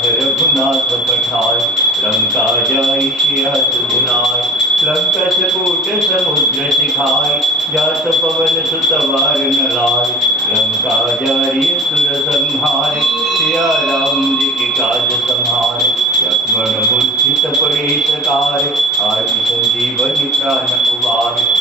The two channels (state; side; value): normal; both; correlation 0.39